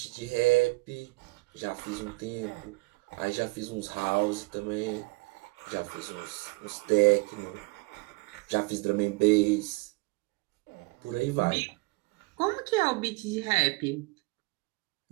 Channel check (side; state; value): left; quieter; 26.4 dB